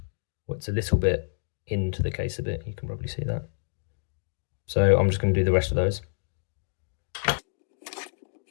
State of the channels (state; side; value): silent; right; digital silence